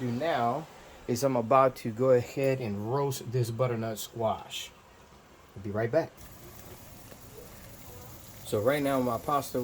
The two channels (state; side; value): identical; both; correlation 1.00